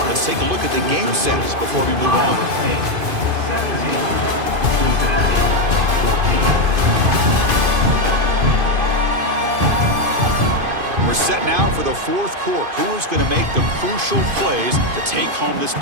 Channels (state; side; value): late; left; 2.5 ms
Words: Let's take a look at the game sets before we move on. We're set now for the 4th quarter. Who is going to make the crucial plays to take home this